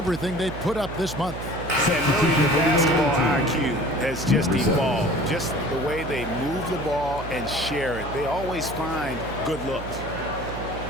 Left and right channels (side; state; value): right; noise; hum, 10 dB below the sound